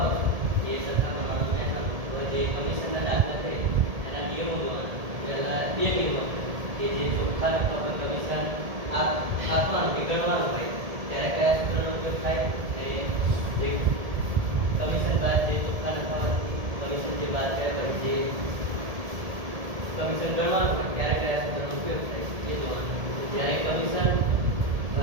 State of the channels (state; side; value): late; left; 1.7 ms